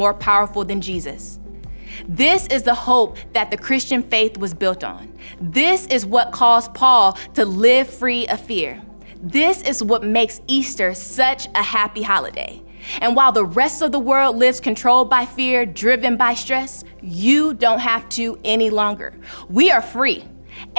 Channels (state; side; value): inverted; both; correlation -1.00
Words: powerful than Jesus. This is the hope that the Christian faith was built on. This is what caused Paul to live free of fear. This is what makes Easter such a happy holiday. And while the rest of the world lives controlled by fear, driven by stress, you don't have to any longer. We are free.